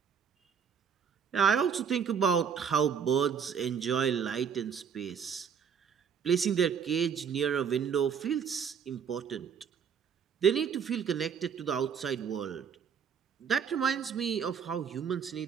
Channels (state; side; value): quieter; left; 7.2 dB